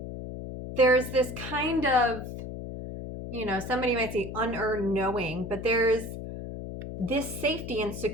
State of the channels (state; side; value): noise; left; hum, 8 dB below the sound